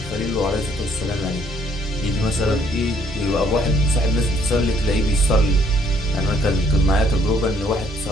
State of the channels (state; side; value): normal; both; correlation 0.65